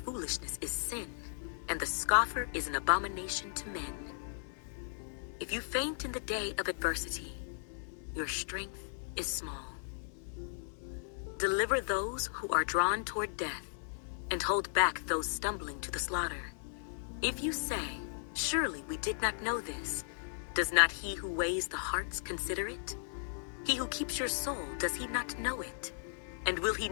is sin, and the scoffer is an abomination to men. If you faint in the day of adversity, your strength is small. Deliver those who are drawn toward death, and hold back those stumbling to the slaughter. If you say, "Surely we did not know this," does not he who weighs the hearts consider it? He who keeps your soul, does he not know it? And will he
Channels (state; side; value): silent; right; digital silence